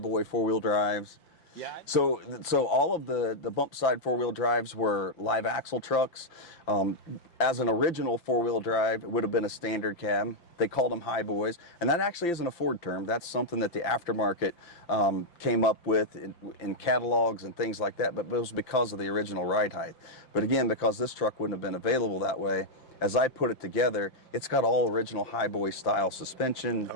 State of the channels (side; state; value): right; late; 5.8 ms